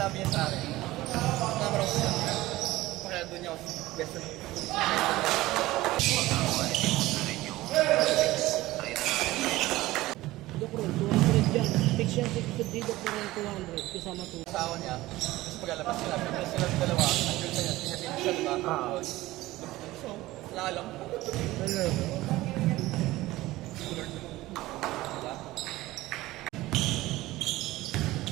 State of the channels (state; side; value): quieter; left; 17.8 dB